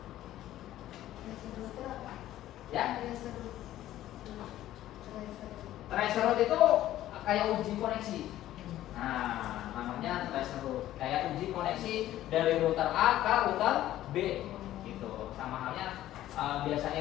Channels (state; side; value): quieter; right; 13.6 dB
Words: Ya, tracer route itu kayak uji koneksi. Nah, namanya tracer route. Kayak uji koneksi dari router A ke router B gitu. Sama halnya